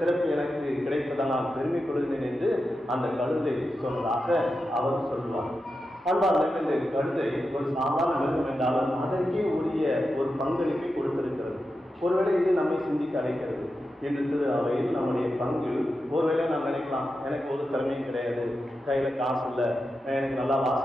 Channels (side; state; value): both; normal; correlation 0.90